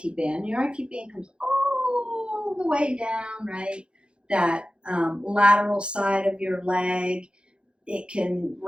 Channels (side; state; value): left; late; 0.055 ms